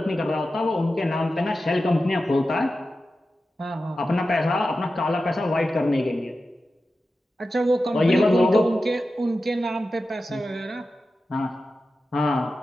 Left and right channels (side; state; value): both; normal; correlation 0.92